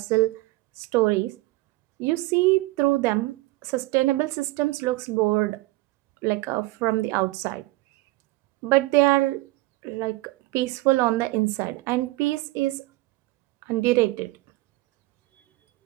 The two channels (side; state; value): left; quieter; 20.5 dB